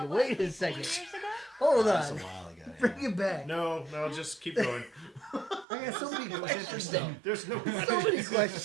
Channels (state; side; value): drops out; left; at 5.7 s